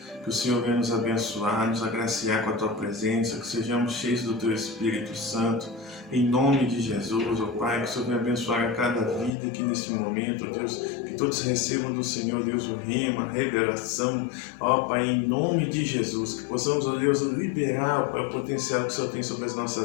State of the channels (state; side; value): drops out; right; at 9.3 s